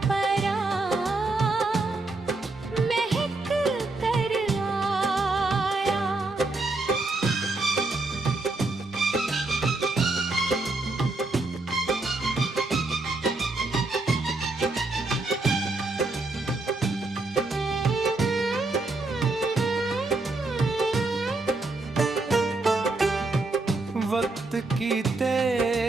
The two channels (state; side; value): quieter; left; 3.2 dB